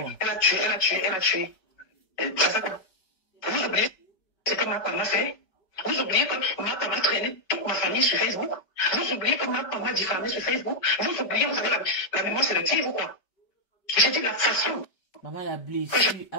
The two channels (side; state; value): right; late; 5.0 ms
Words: a tué. C'est ça quoi? Vous oubliez ce que ma femme a fait? Vous oubliez que ma femme a traîné toute ma famille sur Facebook? Vous oubliez que ma femme m'a diffamé sur Facebook? Vous oubliez, vous avez la mémoire sélective ou quoi? J'ai dit la façon. Maman, la blessure